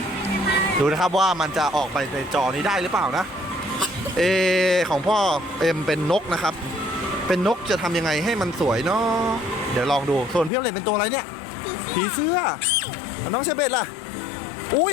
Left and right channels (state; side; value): drops out; right; at 10.5 s